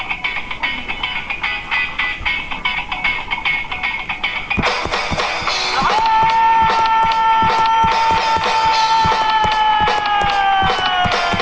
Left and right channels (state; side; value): identical; both; correlation 1.00